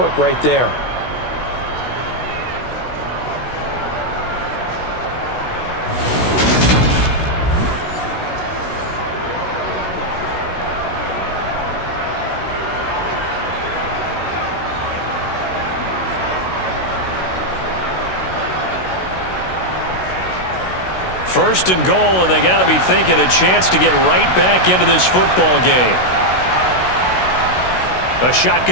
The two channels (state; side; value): late; right; 16 ms